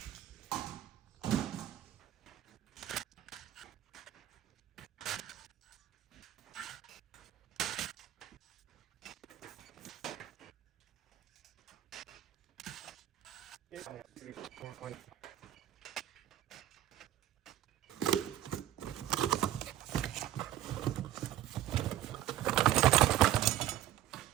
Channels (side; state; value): left; quieter; 12.7 dB